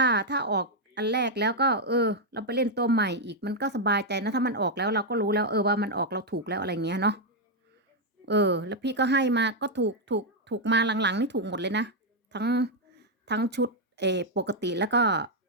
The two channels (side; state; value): both; normal; correlation 0.00